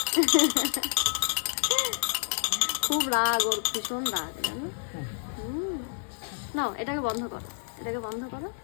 খুব রাগ ওর, ভীষণ রাগ জানো। নাও এটাকে বন্ধ করো, এটাকে বন্ধ করো,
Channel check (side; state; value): right; silent; digital silence